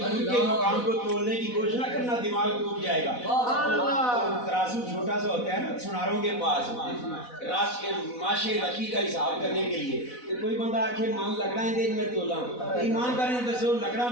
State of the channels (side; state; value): right; late; 4.1 ms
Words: کے مقام کو تولنے کی کوشش نہ کرنا, دماغ ٹوٹ جائے گا. ترازو چھوٹا سا ہوتا ہے نا سناروں کے پاس, راش کے ماشے رکھی کا حساب کرنے کے لیے. کوئی بندہ آکھے مان لکڑا دے میں تولا ہوں, ایمانداری دسو لکڑا